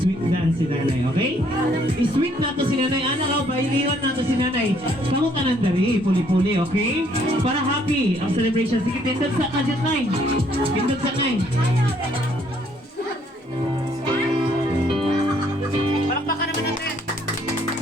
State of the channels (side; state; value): both; normal; correlation 0.66